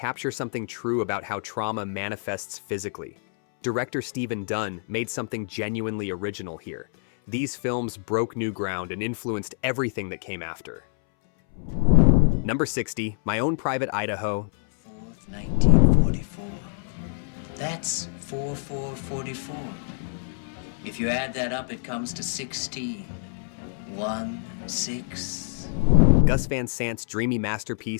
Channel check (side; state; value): right; silent; 61 dB below the other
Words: something true about how trauma manifests physically. Director Stephen Dunn made something genuinely original here. These films broke new ground and influenced everything that came after. Number 60, My Own Private Idaho. 4th, 1944. That's 4444. If you add that up, it comes to 16. 1, 6. Gus Van Sant's dreamy